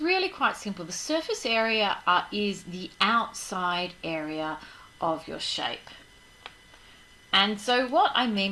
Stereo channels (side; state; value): both; identical; correlation 1.00